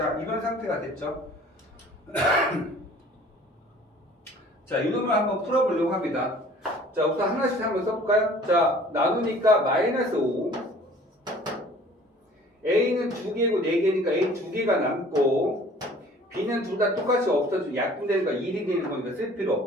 이런 상태가 됐죠? 자, 이놈을 한번 풀어보려고 합니다. 자, 우선 하나씩 한번 써볼까요? 자, 나누니까 마이너스 5 A는 2개고 4개니까 A 2개가 남고 B는 둘 다 똑같이 없어지고 약분되니까 1이 되는 거니까 쓸 필요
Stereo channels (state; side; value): normal; both; correlation 0.50